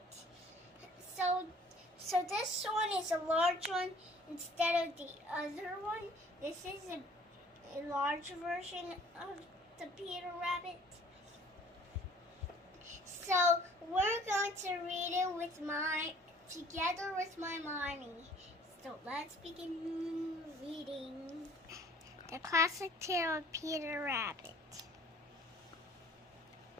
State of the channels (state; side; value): normal; both; correlation 0.54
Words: So this one is a large one instead of the other one. This is a large version of the Peter Rabbit. So we're going to read it together with my mommy. So let's begin reading the classic tale of Peter Rabbit.